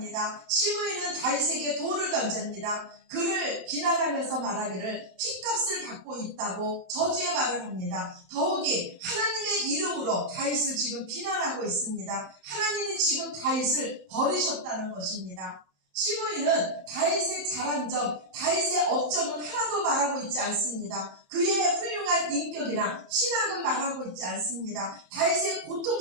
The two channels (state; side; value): late; left; 27 ms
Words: 시므이는 다윗에게 돌을 던집니다. 그를 비난하면서 말하기를 핏값을 받고 있다고 저주의 말을 합니다. 더욱이 하나님의 이름으로 다윗을 지금 비난하고 있습니다. 하나님이 지금 다윗을 버리셨다는 것입니다. 시므이는 다윗의 잘한 점, 다윗의 업적은 하나도 말하고 있지 않습니다. 그의 훌륭한 인격이나 신앙은 말하고 있지 않습니다. 다윗의